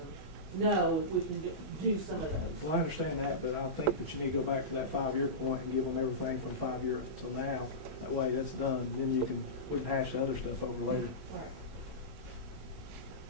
know if we can do some of those. Well, I understand that, but I think that you need to go back to that 5-year point and give them everything from 5 years till now. That way that's done, and then we can hash the other stuff over later. All right.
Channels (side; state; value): left; late; 20 ms